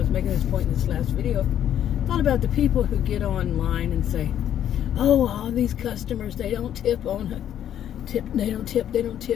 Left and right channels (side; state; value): right; quieter; 10.4 dB